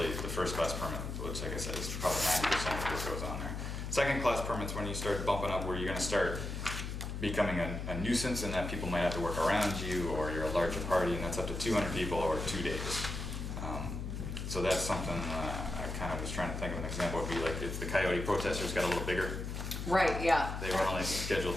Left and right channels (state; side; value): noise; left; hum, 5 dB below the sound